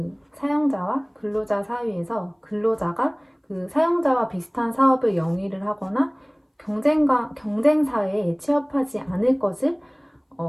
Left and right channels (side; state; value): both; identical; correlation 1.00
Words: 사용자와 근로자 사이에서 근로자가 그 사용자와 비슷한 사업을 영위를 하거나 경쟁사에 취업하지 않을 것을